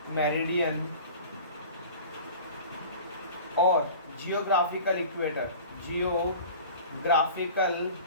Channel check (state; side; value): inverted; both; correlation -0.40